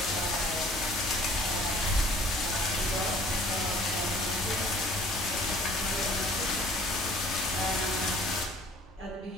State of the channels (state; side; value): normal; both; correlation 0.53